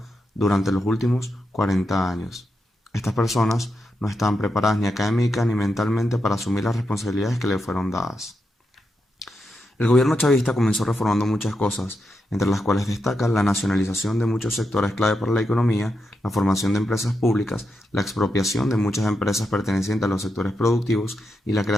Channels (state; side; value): normal; both; correlation 0.85